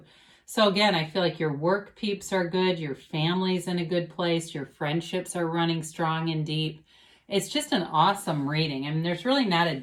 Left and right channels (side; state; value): both; identical; correlation 1.00